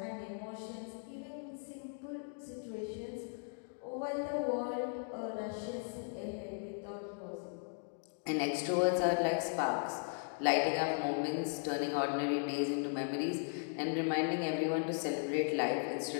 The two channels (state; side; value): silent; right; 53 dB below the other